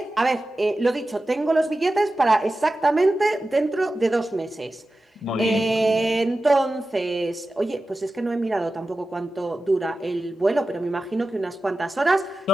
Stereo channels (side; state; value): both; normal; correlation 0.94